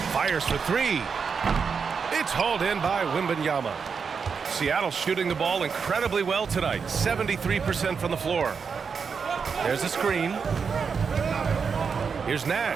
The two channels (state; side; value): quieter; left; 5.8 dB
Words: Fires for three. It's hauled in by Wembanyama. Seattle shooting the ball incredibly well tonight. 73% from the floor. There's a screen. Here's